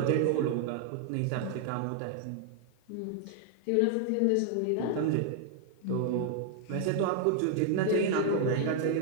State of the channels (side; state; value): both; different; correlation 0.00